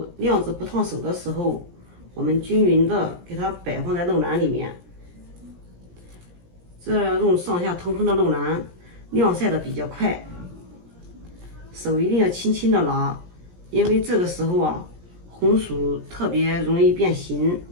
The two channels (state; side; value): late; left; 17 ms